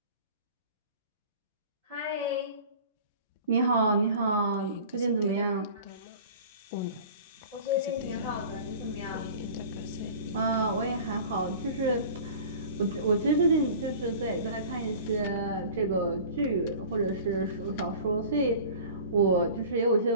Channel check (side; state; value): both; inverted; correlation -0.41